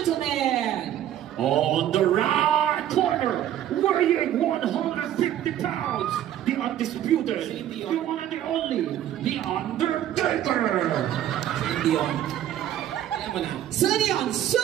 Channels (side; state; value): left; quieter; 11.5 dB